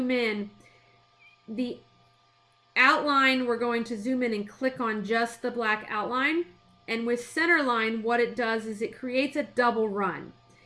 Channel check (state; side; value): identical; both; correlation 1.00